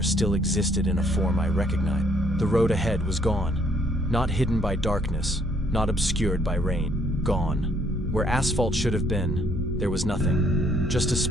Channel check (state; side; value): normal; both; correlation 0.66